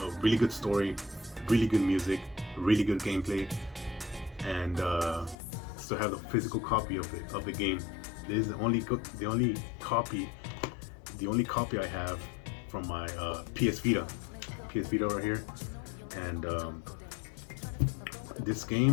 really good story, really good music, really good gameplay, and still have the physical copy of the game. This is the only copy I have from my PS Vita right here, and this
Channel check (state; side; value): drops out; right; at 5.4 s